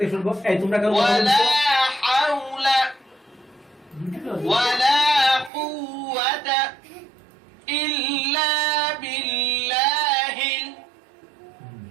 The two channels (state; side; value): drops out; left; at 5.5 s